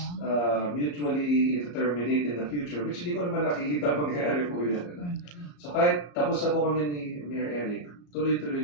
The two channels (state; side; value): late; right; 34 ms